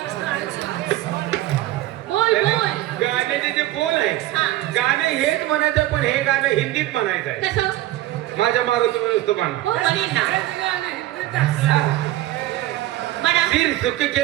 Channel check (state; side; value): quieter; left; 15.5 dB